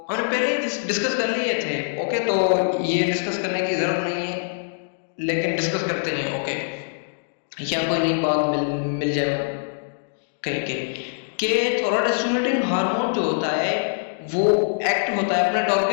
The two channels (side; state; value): right; silent; digital silence